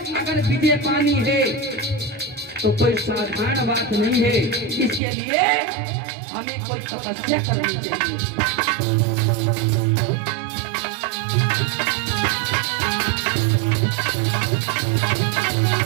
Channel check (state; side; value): drops out; left; at 5.0 s